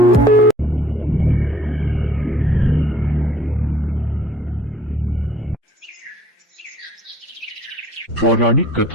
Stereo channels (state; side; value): normal; both; correlation 0.58